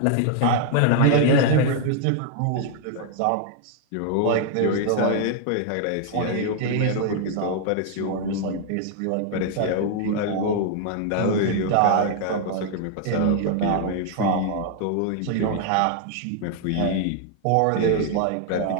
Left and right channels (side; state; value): both; different; correlation 0.00